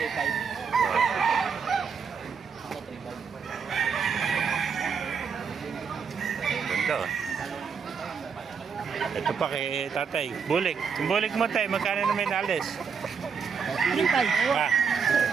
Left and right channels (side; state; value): left; quieter; 6.2 dB